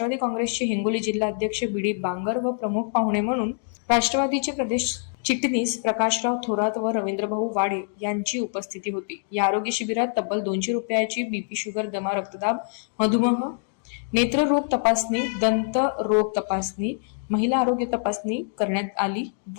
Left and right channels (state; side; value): silent; right; 62 dB below the other